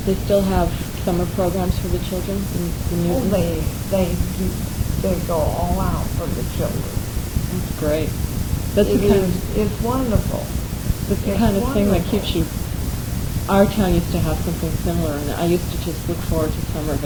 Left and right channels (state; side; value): identical; both; correlation 1.00